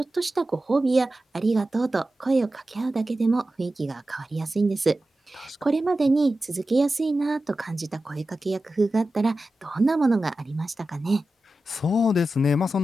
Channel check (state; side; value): normal; both; correlation 0.93